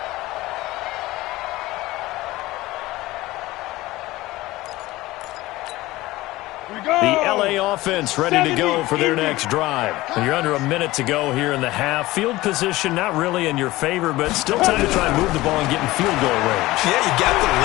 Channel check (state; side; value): quieter; right; 18.5 dB